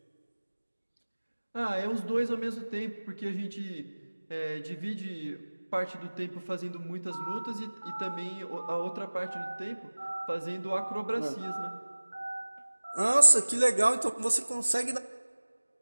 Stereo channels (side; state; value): both; inverted; correlation -1.00